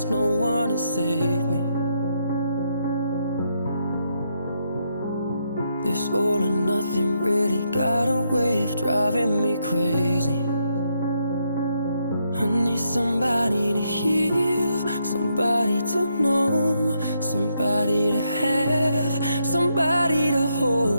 no one to save me. This all or nothing really got a way of driving me crazy. I need somebody to heal, somebody to know, somebody to have, somebody to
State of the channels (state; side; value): inverted; both; correlation -0.78